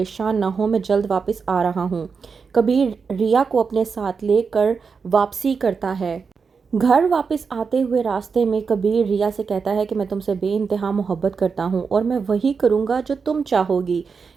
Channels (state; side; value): quieter; left; 5.4 dB